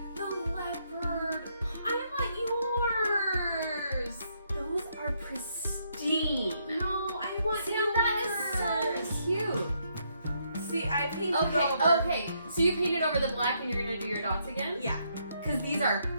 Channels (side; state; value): both; inverted; correlation -0.74